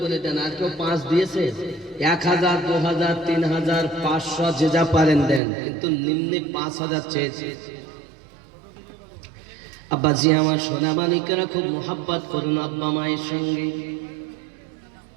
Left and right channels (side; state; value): left; drops out; at 5.4 s